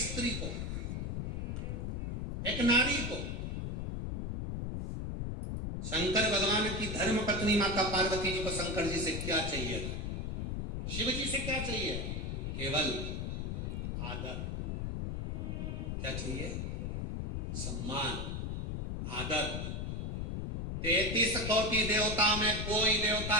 स्त्री को, एक नारी को? शंकर भगवान की धर्म पत्नी माता पार्वती जी को शंकर जी से क्या चाहिए? शिव जी से क्या चाहिए? केवल आदर। क्या चाहिए? सम्मान, आदर। 33 कोटि देवता में कोई देवता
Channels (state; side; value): noise; left; rumble, 3 dB below the sound